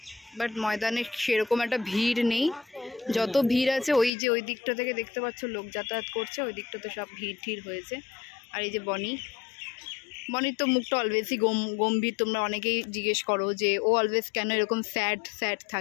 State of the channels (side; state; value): right; drops out; at 4.1 s